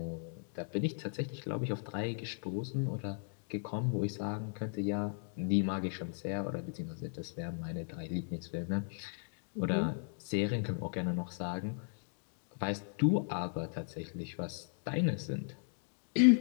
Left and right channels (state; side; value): silent; right; 53 dB below the other